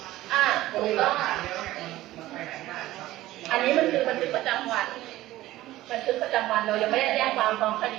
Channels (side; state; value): left; quieter; 16.1 dB